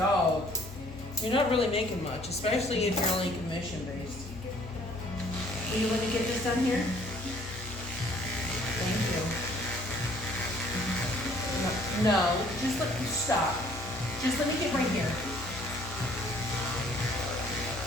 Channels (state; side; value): normal; both; correlation 0.59